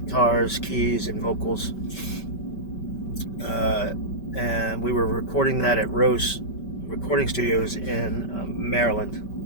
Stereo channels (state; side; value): late; right; 5.2 ms